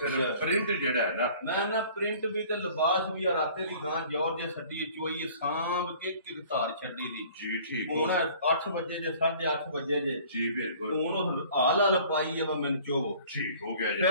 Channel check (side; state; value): both; inverted; correlation -0.51